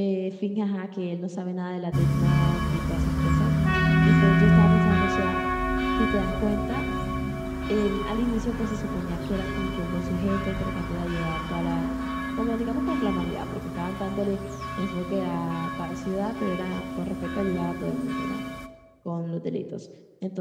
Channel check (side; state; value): both; identical; correlation 1.00